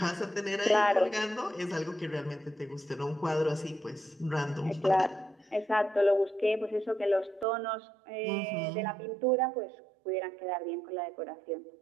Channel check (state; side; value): drops out; left; at 7.5 s